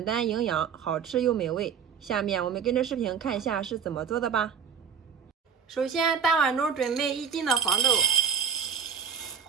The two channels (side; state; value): left; quieter; 7.0 dB